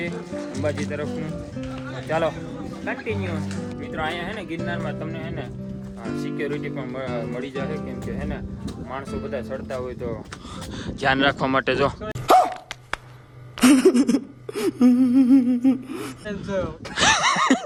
અંબાજી તરફનું. ચાલો કન્ટિન્યુ. મિત્રો અહીંયા હે ને ગિરનારમાં તમને હે ને સિક્યોરિટી પણ મળી જશે, કેમ કે હે ને માણસો બધા ચડતા હોય તો ધ્યાન રાખવા માટે. જો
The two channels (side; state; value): both; identical; correlation 1.00